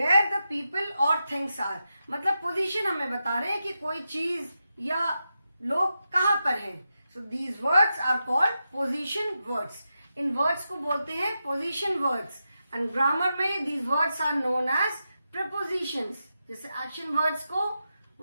the people or things are. मतलब position हमें बता रहे हैं कि कोई चीज या लोग कहाँ पर हैं. So these words are called position words. In words को बोलते हैं पोजीशन वर्ड्स. एंड ग्रामर में these words are known as prepositions. जैसे एक्शन वर्ड्स को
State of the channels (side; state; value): both; inverted; correlation -0.88